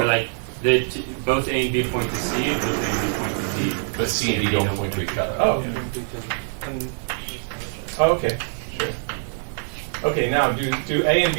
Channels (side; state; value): left; silent; 63 dB below the other